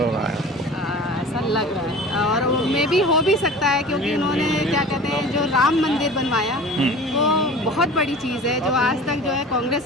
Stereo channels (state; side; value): normal; both; correlation 0.40